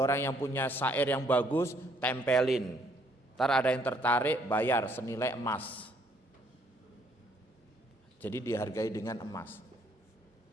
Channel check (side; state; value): both; normal; correlation 0.67